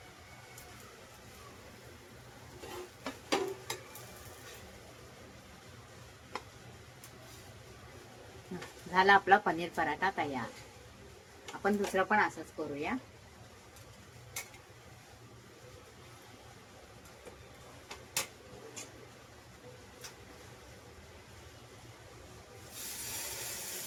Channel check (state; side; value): identical; both; correlation 1.00